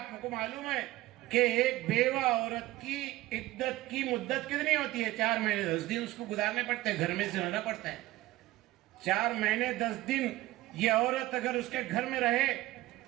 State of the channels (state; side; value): quieter; left; 17.4 dB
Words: کو معلوم ہے کہ ایک بیوہ عورت کی عدت کی مدت کتنی ہوتی ہے؟ 4 مہینے 10 دن اس کو گزارنے پڑتے ہیں, گھر میں سے رہنا پڑتا ہے. 4 مہینے 10 دن یہ عورت اگر اس کے گھر میں رہے